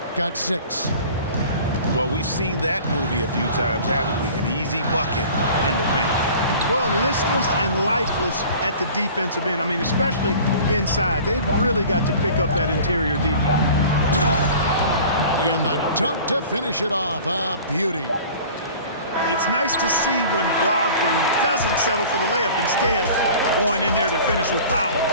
got 6. Well, we've seen that movie a few times, haven't we? An easy bucket in the paint. Well, listless and lifeless at the defensive end. I mean, especially inside. They've really got to pick up that interior defense. And the dunk to finish it off. A beauty. It's nice to see when Brogdon doesn't settle for the layup, instead going in there to finish with power.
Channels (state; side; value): inverted; both; correlation -0.43